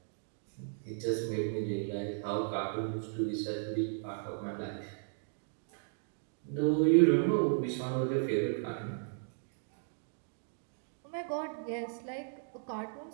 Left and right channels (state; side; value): silent; left; digital silence